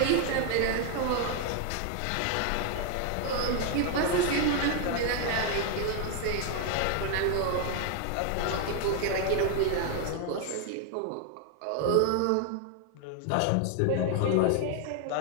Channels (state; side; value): different; both; correlation 0.00